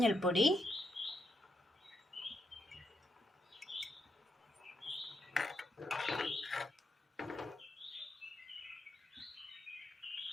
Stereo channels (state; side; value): normal; both; correlation 0.80